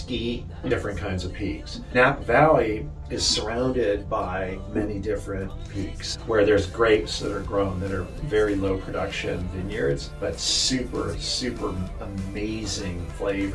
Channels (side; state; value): both; identical; correlation 1.00